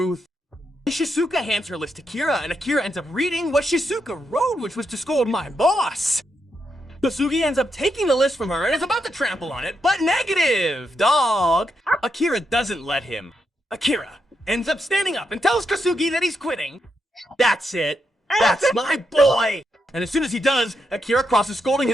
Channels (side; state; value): both; normal; correlation 0.82